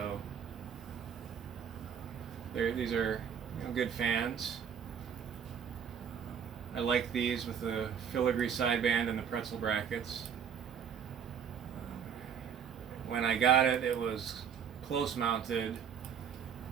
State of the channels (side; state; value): left; quieter; 7.8 dB